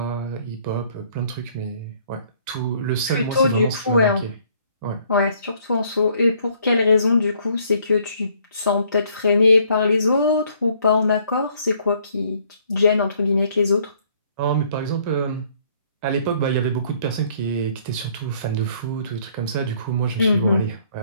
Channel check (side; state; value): both; inverted; correlation -0.63